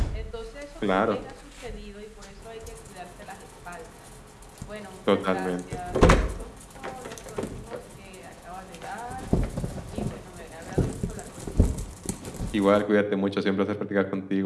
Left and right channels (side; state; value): both; identical; correlation 1.00